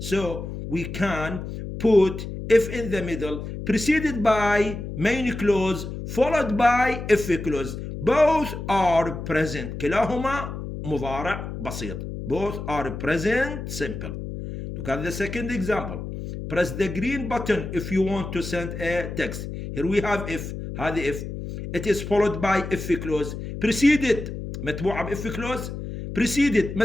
we can put if in the middle, preceded by main clause, followed by if clause. Both are present. كلاهما مضارع بسيط. Both are present simple. Look at the second example. Press the green button if you want to send a text. Here we have if. هذه if. It is followed by if clause. Preceded متبوعة بإف clause. Preceded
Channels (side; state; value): left; noise; hum, 7 dB below the sound